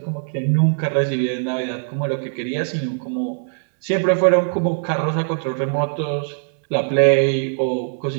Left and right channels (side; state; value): left; silent; digital silence